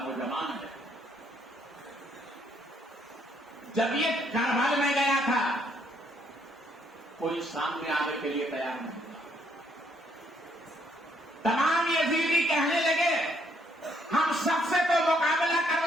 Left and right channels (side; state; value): both; normal; correlation 0.70